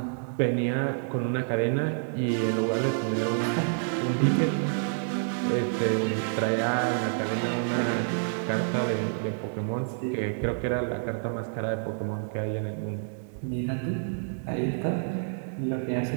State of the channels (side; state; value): left; silent; digital silence